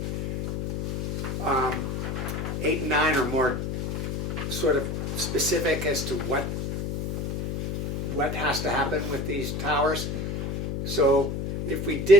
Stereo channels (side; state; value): left; noise; hum, 3 dB below the sound